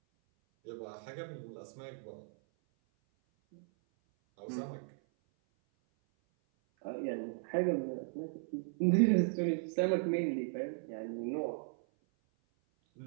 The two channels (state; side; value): silent; left; 53 dB below the other